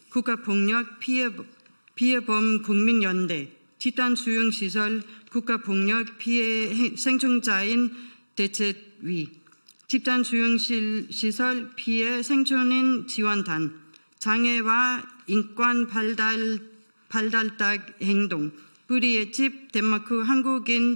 국가폭력 피해범 국민연대 집단수용시설 국가폭력 피해 생존자인 대책위 집단수용시설 피해 생존인 지원단 장애와 인권 발달딱 행동 우리의 집 덴마크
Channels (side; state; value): both; inverted; correlation -1.00